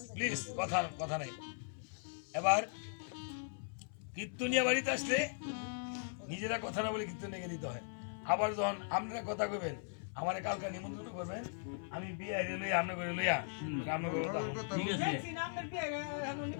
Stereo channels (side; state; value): right; silent; 52 dB below the other